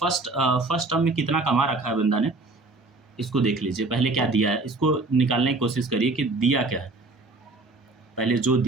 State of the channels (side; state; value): left; quieter; 3.3 dB